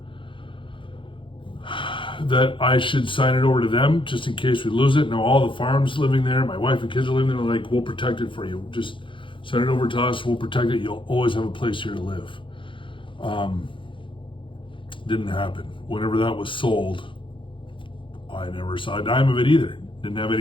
that I should sign it over to them just in case we lose it. Now all the farm's living there, my wife and kids are living there. They're like, we'll protect it for you. Just send it over to us. We'll protect it. You'll always have a place here to live. Didn't happen. Whenever that was sold, I never saw a dime of it either. Didn't have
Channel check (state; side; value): late; right; 0.25 ms